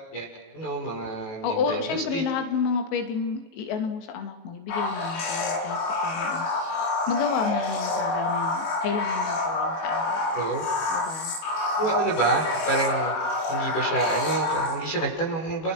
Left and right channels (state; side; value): late; right; 19 ms